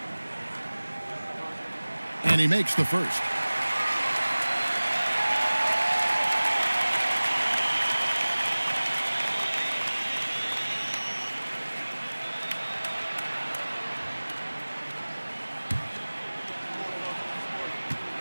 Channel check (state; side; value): inverted; both; correlation -1.00